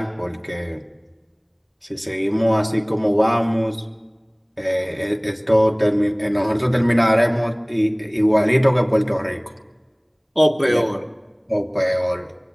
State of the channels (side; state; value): both; identical; correlation 1.00